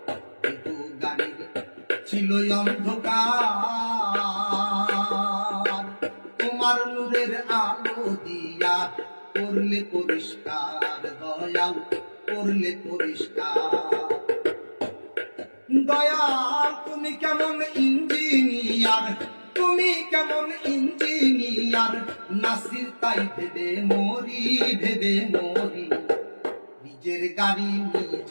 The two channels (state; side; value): inverted; both; correlation -1.00